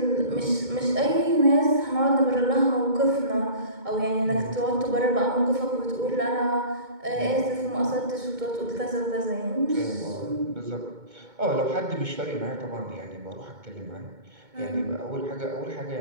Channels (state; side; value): late; left; 2.2 ms